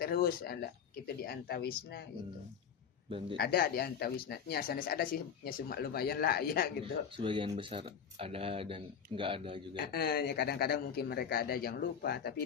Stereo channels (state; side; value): quieter; right; 7.4 dB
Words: ada gitu di antawisna gitu. Ada di antawisna nya sanes ada sih nya cuma lumayan lah ya gitu. Sebagian besar ada dan enggak ada juga. Ya kadang-kadang mungkin mereka ada yang lupa, tapi